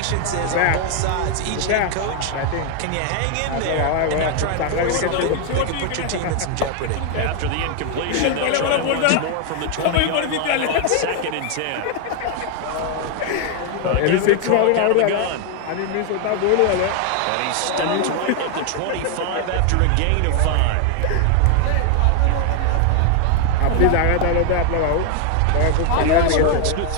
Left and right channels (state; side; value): different; both; correlation 0.00